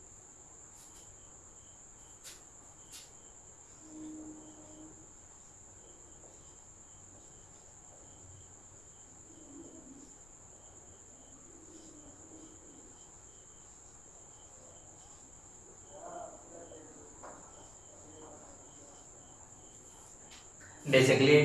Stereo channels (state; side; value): noise; left; rumble, 20 dB below the sound